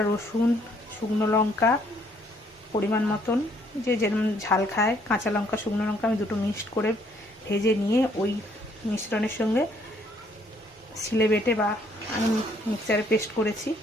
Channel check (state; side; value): normal; both; correlation 0.66